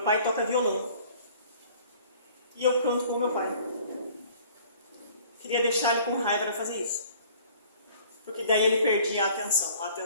pai toca violão. E eu canto com meu pai. Queria deixar ele com raiva para fazer isso. Porque daí ele perdia a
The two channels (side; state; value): both; inverted; correlation -0.52